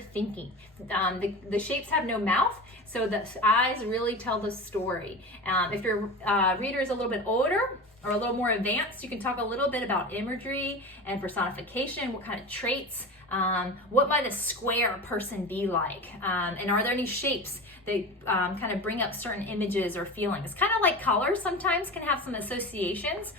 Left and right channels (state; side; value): normal; both; correlation 0.29